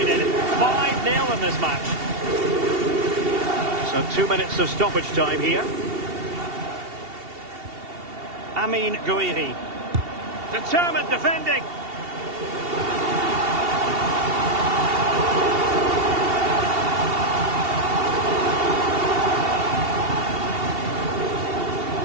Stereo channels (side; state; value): left; late; 2.7 ms